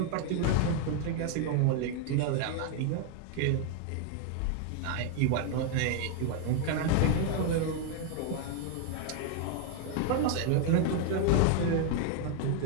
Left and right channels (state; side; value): different; both; correlation 0.00